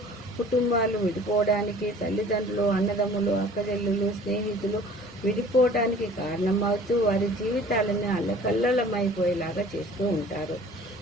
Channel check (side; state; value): both; normal; correlation 0.48